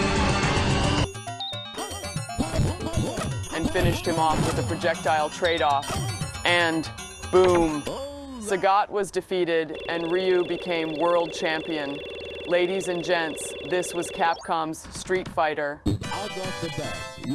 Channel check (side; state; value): both; identical; correlation 1.00